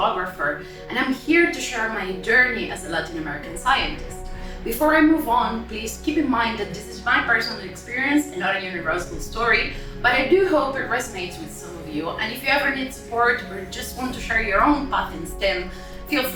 and I'm here to share my journey as a Latin American scientist. Before I move on, please keep in mind that this is my personal experience and not a universal story, but I do hope it resonates with some of you, and if you ever need support or just want to share your own path in STEM, feel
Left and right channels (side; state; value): both; identical; correlation 1.00